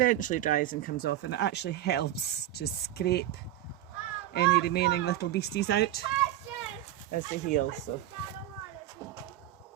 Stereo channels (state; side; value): quieter; left; 13.3 dB